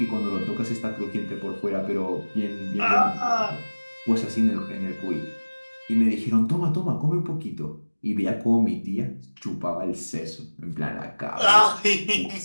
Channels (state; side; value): inverted; both; correlation -1.00